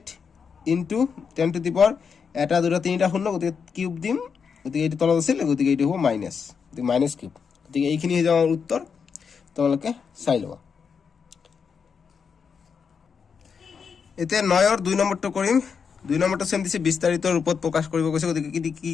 ইনটু 10 টু দি পাৱাৰ এটা 2টা 3টা 0, গতিকে কিউব দিম, গতিকে এইটো তলত আছিল, গতিকে এইটো হ'ব মাইনাছ, গতিকে মাইনাছ কিউব, গতিকে এইখিনি হৈ যাব আমাৰ উত্তৰ, তোমালোকে চাই ল'বা। এতিয়া 9ৰ 2 নম্বৰটো কৰিম। 2 নম্বৰটো চেম দিছে বিস্তাৰিত ৰূপত প্ৰকাশ কৰিব কৈছে, গতিকে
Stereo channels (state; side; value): quieter; right; 6.2 dB